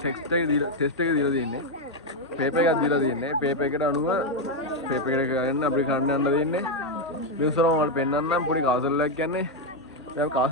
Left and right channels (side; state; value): both; normal; correlation 0.04